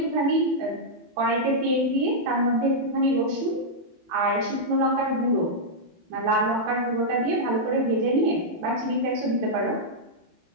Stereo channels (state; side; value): late; left; 18 ms